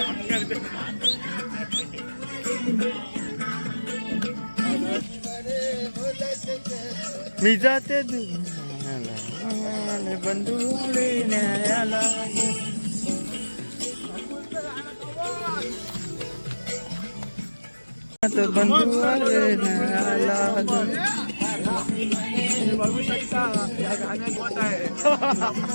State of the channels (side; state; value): both; inverted; correlation -1.00